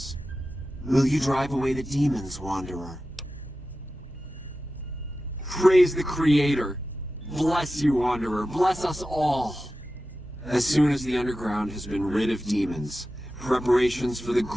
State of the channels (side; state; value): both; normal; correlation 0.93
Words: Will you drive away the demons, Wanderer? Praise the Creator. Bless you, Wanderer. Bless us all. As soon as the underground has been rid of demons, preparations for the